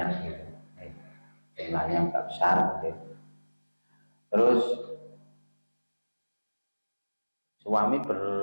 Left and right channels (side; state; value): both; inverted; correlation -1.00